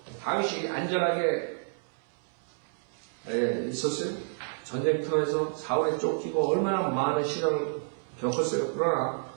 다윗이 안전하게 있었어요. 전쟁터에서 사울에 쫓기고 얼마나 많은 시련을 겪었어요. 그러나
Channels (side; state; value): left; silent; 58 dB below the other